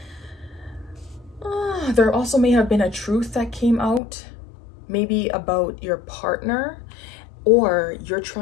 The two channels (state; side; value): drops out; right; at 4.0 s